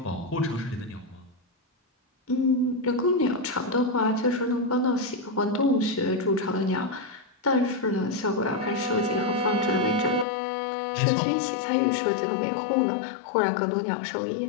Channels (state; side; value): drops out; right; at 10.2 s